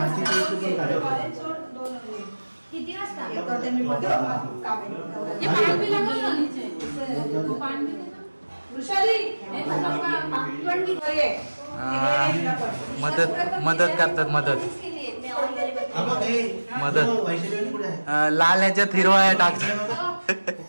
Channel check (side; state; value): both; inverted; correlation -1.00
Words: किती वाजता ये करते मी बघते काम आहे. ये पाणी भी लगा ना नीचे. तो पाणी दे ना वृषाली. मदत करतात. मदत लाल ह्याच्यात हिरवा टाकतात.